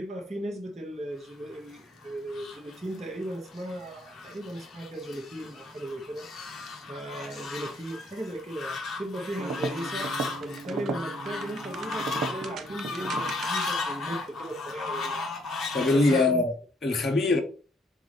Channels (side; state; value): both; normal; correlation 0.67